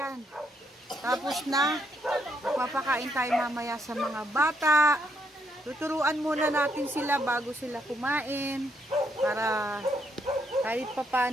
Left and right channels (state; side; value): normal; both; correlation 0.74